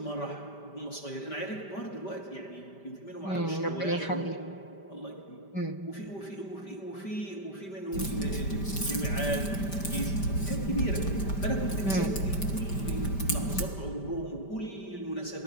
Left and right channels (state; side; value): late; right; 5.1 ms